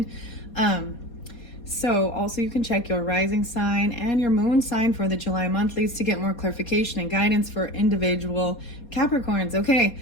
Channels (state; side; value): late; right; 4.2 ms